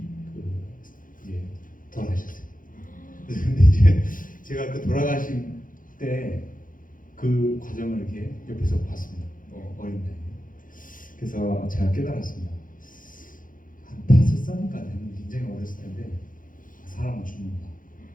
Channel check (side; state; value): right; late; 0.39 ms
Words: 이제 돌아가셨어요. 근데 이제 제가 그 돌아가신 때 그 과정을 이렇게 옆에서 봤습니다. 어린 나이에. 그래서 제가 깨달았습니다. 한 5살인가 되는 굉장히 어렸을 텐데 사람은 죽는구나.